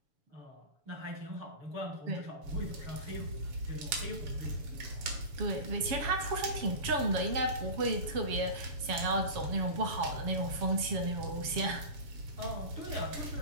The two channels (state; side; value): late; left; 7.0 ms